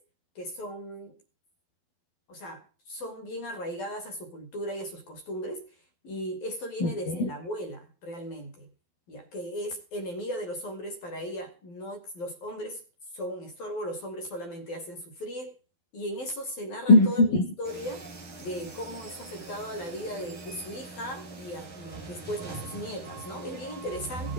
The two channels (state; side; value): late; right; 12 ms